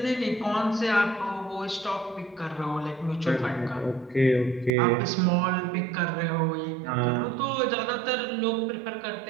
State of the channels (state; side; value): drops out; left; at 4.7 s